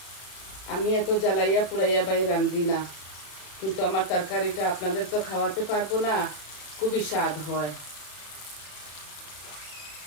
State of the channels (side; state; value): right; late; 34 ms